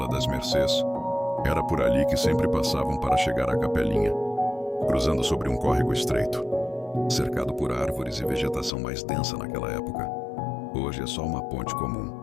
das Mercês. Era por ali que sempre passavam para chegar à capelinha, cruzando sobre um córrego estreito, cercado por árvores e vegetação mais densa naquela época. Hoje é só uma ponte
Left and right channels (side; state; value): right; drops out; at 8.7 s